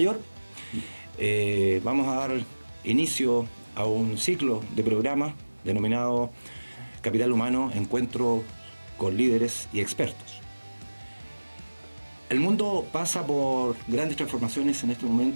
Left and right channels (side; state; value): both; inverted; correlation -1.00